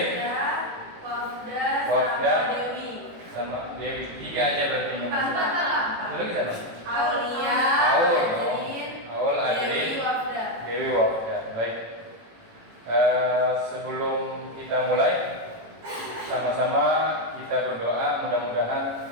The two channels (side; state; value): left; late; 18 ms